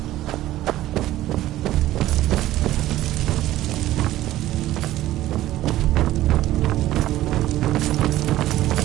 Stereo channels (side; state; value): left; quieter; 14.8 dB